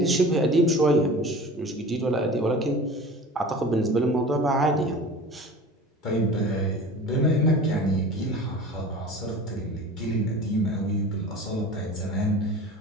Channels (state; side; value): normal; both; correlation 0.38